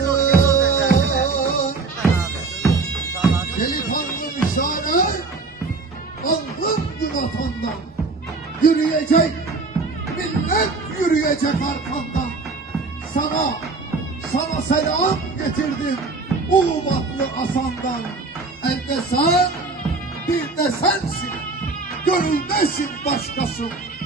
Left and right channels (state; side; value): quieter; left; 3.9 dB